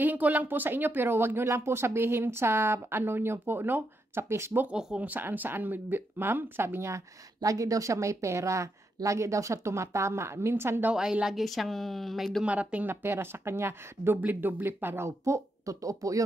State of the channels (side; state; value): both; normal; correlation 0.82